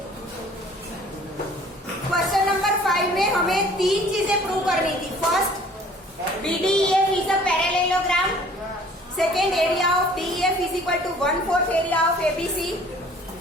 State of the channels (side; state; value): both; normal; correlation 0.52